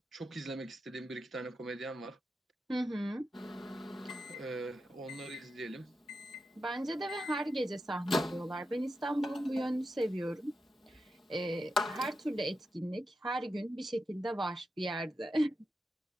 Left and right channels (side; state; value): both; normal; correlation 0.88